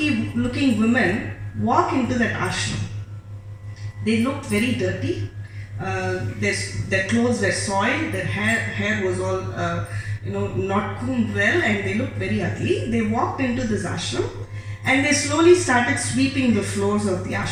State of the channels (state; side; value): identical; both; correlation 1.00